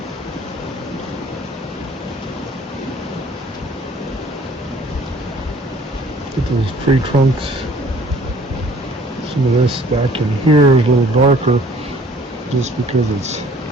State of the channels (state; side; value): normal; both; correlation 0.55